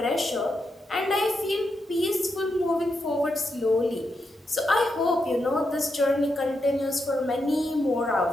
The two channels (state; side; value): normal; both; correlation 0.84